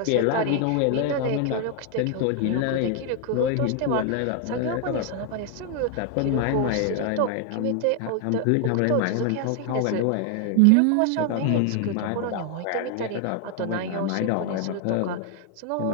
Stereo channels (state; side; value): different; both; correlation 0.00